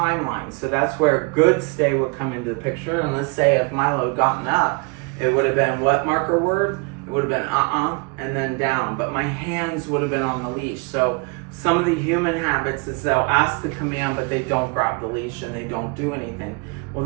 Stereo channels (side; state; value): left; quieter; 30.9 dB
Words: So that's where good stay would come into the picture. And let's say if Milo had gotten up, it would have been what marker word? It would have been and then down. But my hands would have been on the leash. So some of the human habits is they'll ask the command, but they don't grab the leash and they don't do anything. Well,